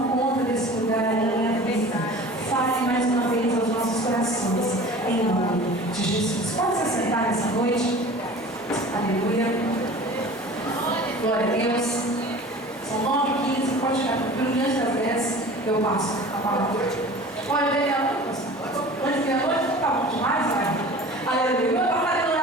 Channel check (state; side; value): normal; both; correlation 0.41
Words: conta desse lugar em minha vida. Fale mais uma vez aos nossos corações, em nome de Jesus. Pode se sentar nessa noite. Aleluia. Glória a Deus. São 9h15, pode ficar diante das 10, eu passo a palavra. Pode ver a noite? Pode ver a noite? Tá bom demais, vai. Aleluia. Eu estava fazendo